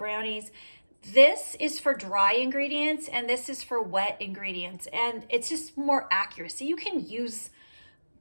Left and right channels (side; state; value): both; inverted; correlation -1.00